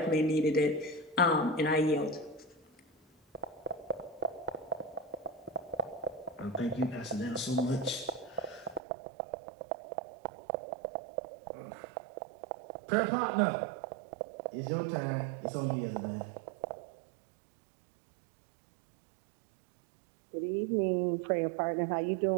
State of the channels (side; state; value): left; drops out; at 8.8 s